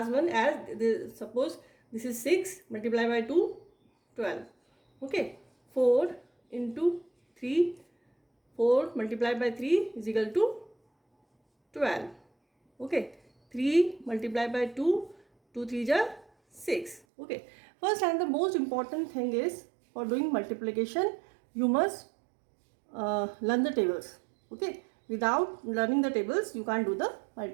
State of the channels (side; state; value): left; drops out; at 17.0 s